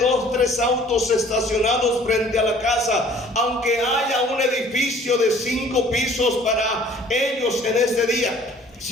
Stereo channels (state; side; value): normal; both; correlation 0.53